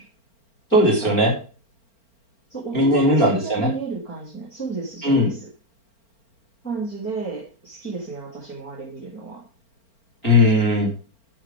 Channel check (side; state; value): right; late; 4.4 ms